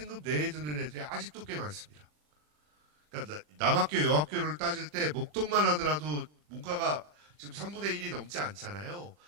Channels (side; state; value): left; late; 40 ms